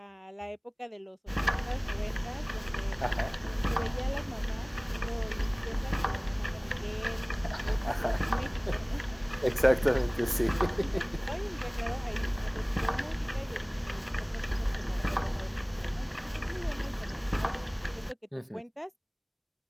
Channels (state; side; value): identical; both; correlation 1.00